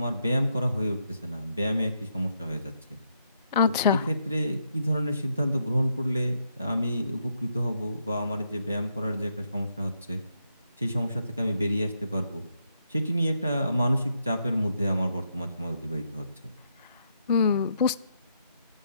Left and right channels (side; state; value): both; inverted; correlation -0.78